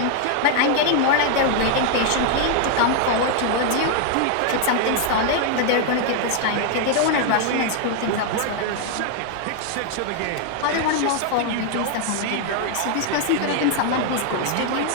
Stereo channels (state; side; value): different; both; correlation 0.00